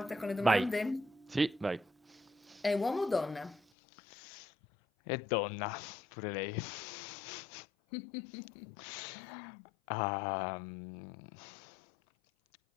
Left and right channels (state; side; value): drops out; right; at 3.6 s